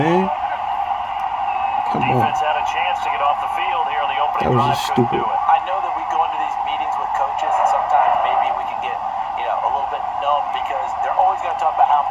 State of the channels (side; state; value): both; identical; correlation 1.00